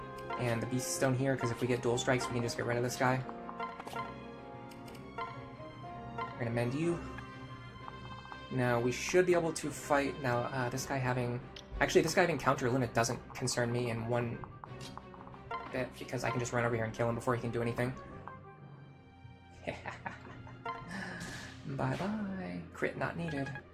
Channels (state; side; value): identical; both; correlation 1.00